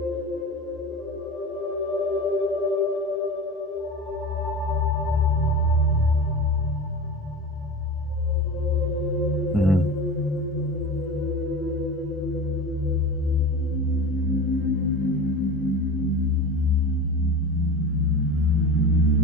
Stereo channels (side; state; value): both; normal; correlation 0.31